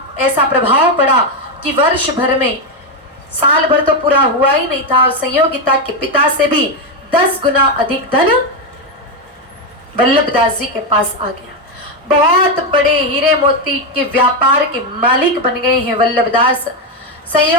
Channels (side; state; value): both; normal; correlation 0.07